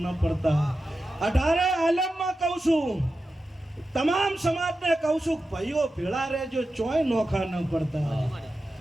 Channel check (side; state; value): both; normal; correlation 0.92